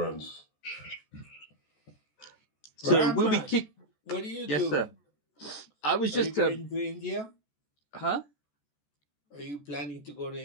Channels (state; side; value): late; right; 14 ms